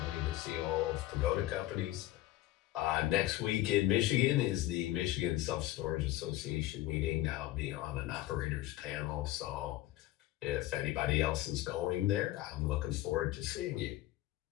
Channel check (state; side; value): quieter; right; 15.7 dB